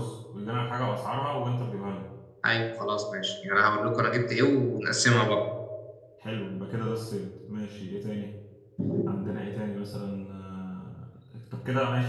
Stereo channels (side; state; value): both; identical; correlation 1.00